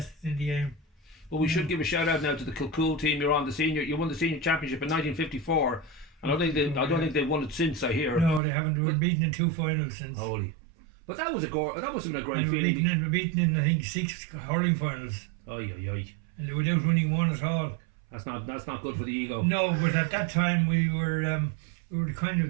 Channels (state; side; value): drops out; left; at 8.4 s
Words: in the game. Well, we should give a shout out now to the Kilcool team. You won the senior championship in 1954. I don't think they've won it since, I hear. No, they haven't. They were beaten in 2 finals since. Holy! But that must have been a great feeling. They were beaten in I think 6 hurling finals. Aye. And without winning one at all. That's not good for the ego. No, but at that time we were the kind